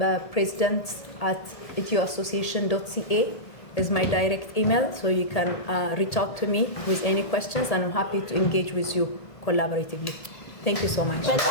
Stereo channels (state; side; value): late; right; 1.8 ms